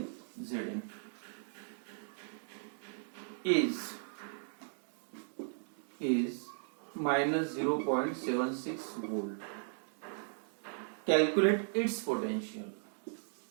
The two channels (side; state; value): left; silent; digital silence